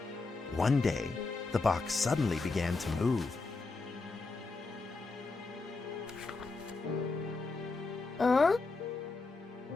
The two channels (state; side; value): quieter; right; 3.8 dB